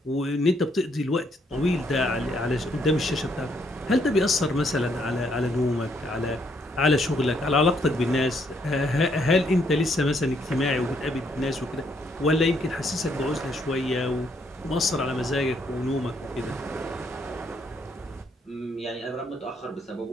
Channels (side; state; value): both; normal; correlation 0.71